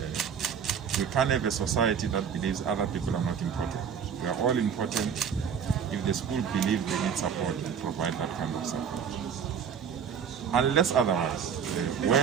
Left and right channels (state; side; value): quieter; left; 7.3 dB